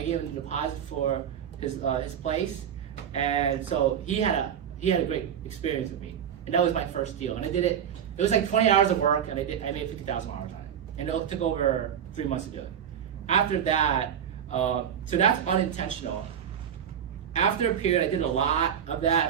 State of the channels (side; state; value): left; quieter; 8.8 dB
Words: gave him the deposit for his place, and so he had a great experience with me. And that was my first deal. And I did it. It was like 20 hours of work, and I made $50,000 on it. And it took over 3 months to do it. After that, So that's unintentional. After a period, I did a lot of that.